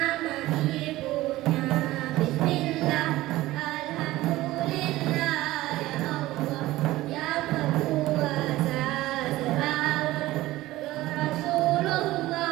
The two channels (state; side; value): quieter; left; 17.1 dB